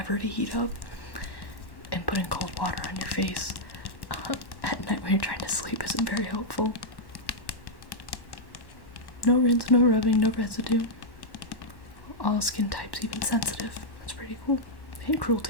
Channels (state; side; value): late; right; 1.1 ms